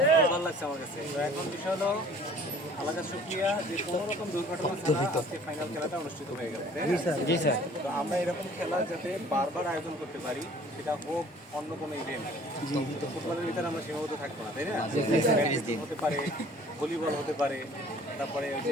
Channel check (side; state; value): both; normal; correlation 0.51